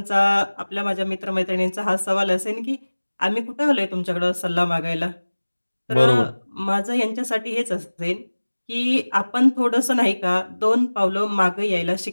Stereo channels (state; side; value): inverted; both; correlation -1.00